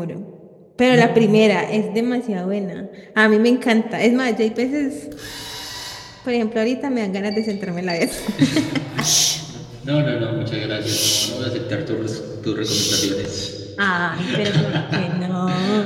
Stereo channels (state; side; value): identical; both; correlation 1.00